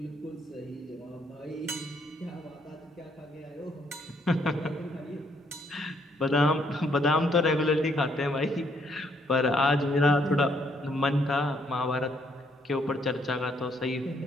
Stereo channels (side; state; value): both; normal; correlation 0.70